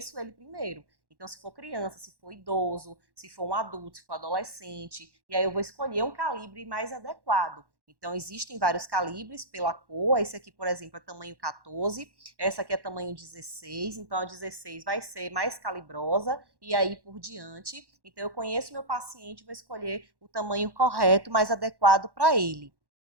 ele primeiro. Então, se for criança, se for idoso, se for um adulto, se for adolescente, e aí eu vou escolher um calibre mais adequado. Então, existem vários calibres pela cor. Esse aqui, por exemplo, é tamanho 14, essa aqui é tamanho 16, então a 16 vai ser mais calibrosa e aí por diante. Então, eu conheço meu paciente, vou escolher o tamanho correto, mais adequado para ele.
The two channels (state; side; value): late; left; 1.1 ms